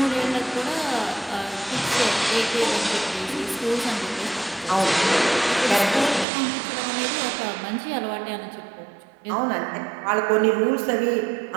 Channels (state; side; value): drops out; left; at 6.2 s